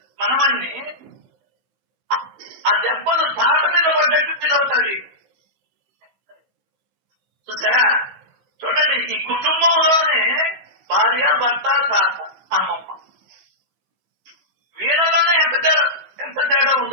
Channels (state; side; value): late; left; 15 ms